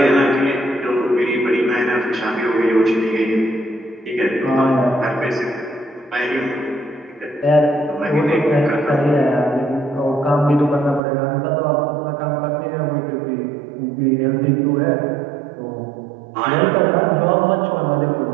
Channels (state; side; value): drops out; left; at 11.0 s